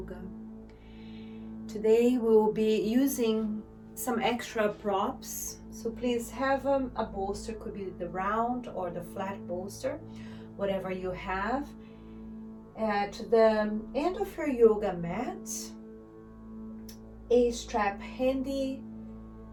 Today we will be using some extra props. So please have a bolster, could be the round or the flat bolster, whatever you have. At the end of your yoga mat, a strap handy,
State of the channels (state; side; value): identical; both; correlation 1.00